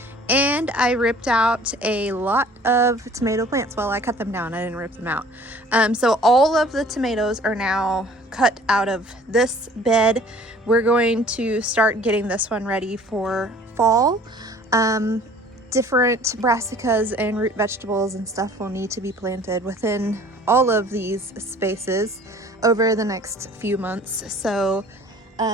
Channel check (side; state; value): both; normal; correlation 0.51